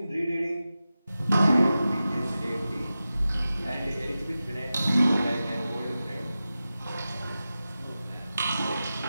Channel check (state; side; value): inverted; both; correlation -0.94